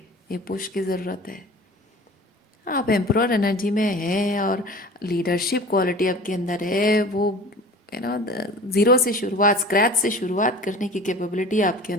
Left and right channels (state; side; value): normal; both; correlation 0.40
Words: ये पुश की ज़रूरत है। आप एम्प्रोर एनर्जी में है और लीडरशिप क्वालिटी आपके अंदर है, वो ज़ीरो से शुरुआत, स्क्रैच से शुरुआत करने की कैपेबिलिटी आपके